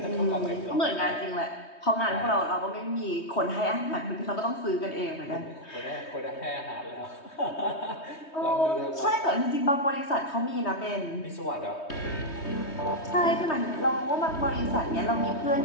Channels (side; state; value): right; late; 3.2 ms